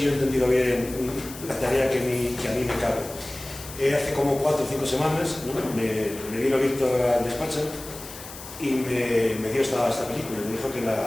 yo he entendido bien la tarea que a mí me cabe. Hace como 4 o 5 semanas, ¿no? me vino Víctor al despacho y me dio esta película, me dijo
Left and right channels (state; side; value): noise; left; hiss, 14 dB below the sound